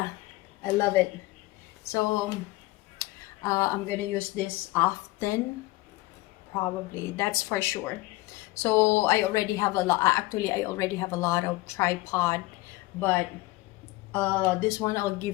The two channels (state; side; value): quieter; right; 20.0 dB